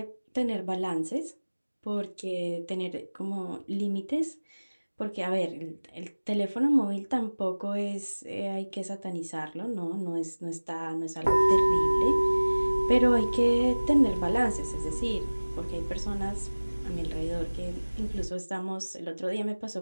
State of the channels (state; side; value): inverted; both; correlation -1.00